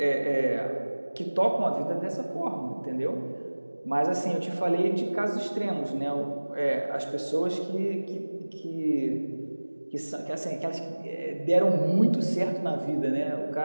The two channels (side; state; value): both; inverted; correlation -1.00